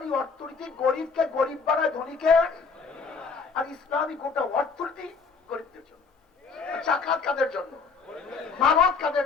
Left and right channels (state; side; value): quieter; right; 4.9 dB